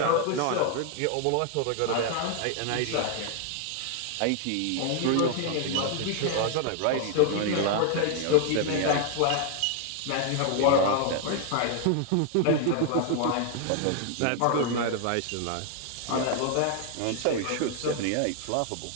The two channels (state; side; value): different; both; correlation 0.00